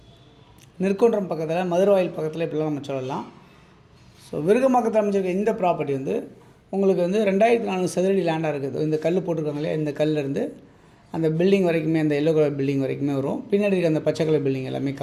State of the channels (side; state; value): both; identical; correlation 1.00